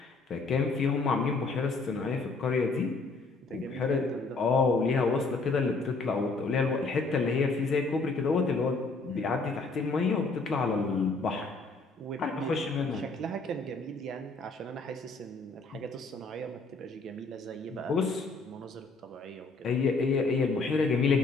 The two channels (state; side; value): quieter; right; 3.7 dB